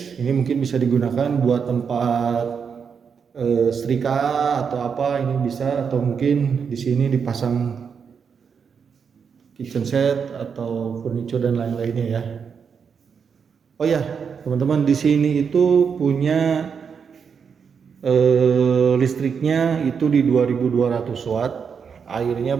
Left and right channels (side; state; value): left; quieter; 6.5 dB